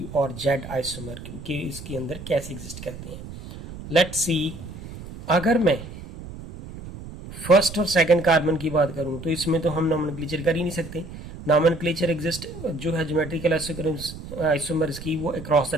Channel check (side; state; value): right; noise; rumble, 13 dB below the sound